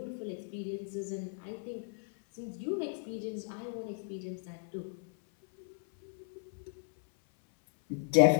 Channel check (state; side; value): silent; right; 54 dB below the other